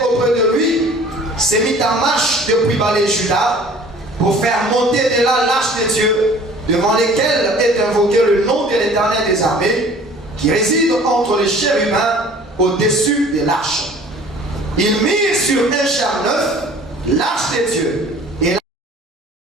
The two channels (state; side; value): normal; both; correlation 0.49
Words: auprès de lui, s'est mis en marche depuis Balé-Juda pour faire monter de là l'arche de Dieu, devant lesquels est invoqué le nom de l'Éternel des armées, qui réside entre les chérubins au-dessus de l'arche. Ils mirent sur un char neuf l'arche de Dieu. Et